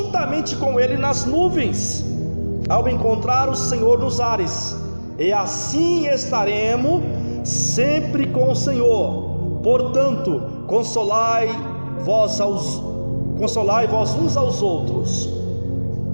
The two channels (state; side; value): inverted; both; correlation -1.00